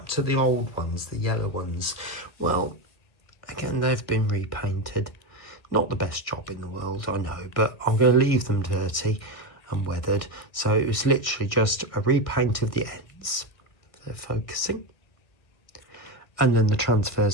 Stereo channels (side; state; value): right; late; 1.6 ms